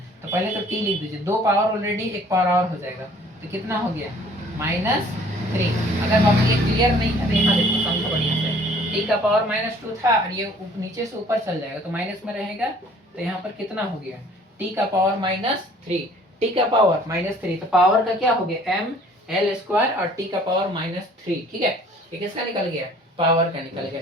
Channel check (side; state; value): both; normal; correlation 0.55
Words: तो पहले तो t लिख दीजिए, दो पावर ऑलरेडी, एक पावर और हो जाएगा, तो कितना हो गया, माइनस थ्री। अगर बाबू ये क्लियर नहीं है तो यहाँ देखो समझो बढ़िया से, टी का पावर माइनस टू था, और ये नीचे से ऊपर चल जाएगा तो माइनस में रहेगा, तो यहाँ पर कितना हो गया, टी का पावर माइनस थ्री, टी का पावर माइनस थ्री, तो पावर का क्या हो गया, एम एल स्क्वायर और टी का पावर माइनस थ्री, ठीक है। ये किसका निकल गया, पावर का निकल गया।